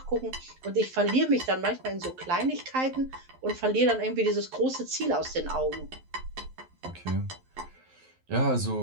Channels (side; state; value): left; late; 11 ms